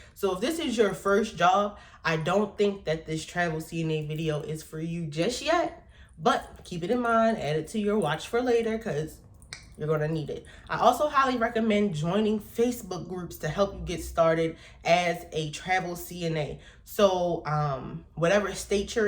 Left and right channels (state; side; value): identical; both; correlation 1.00